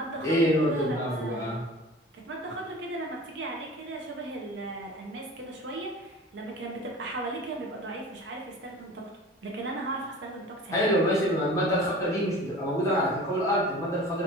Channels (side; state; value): both; normal; correlation 0.40